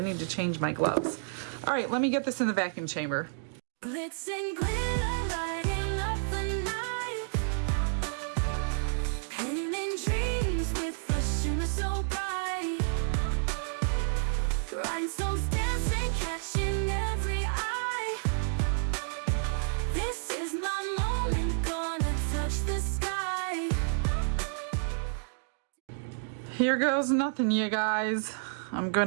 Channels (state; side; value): silent; left; digital silence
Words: to change my gloves. All right, let me get this in the vacuum chamber. Glitz and glitter, lighting up the night. Painting dreams with a shimmer so bright. Rhinestones dancing, catching every eye. This is my moment, gonna touch the sky. Here goes nothing, you guys. I'm